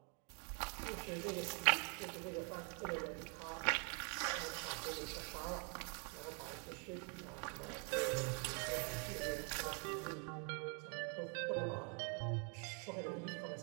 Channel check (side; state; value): left; quieter; 37.7 dB